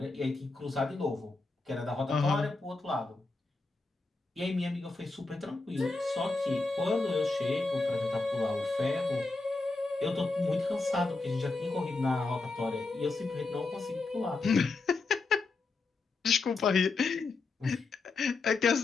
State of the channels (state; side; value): quieter; right; 3.7 dB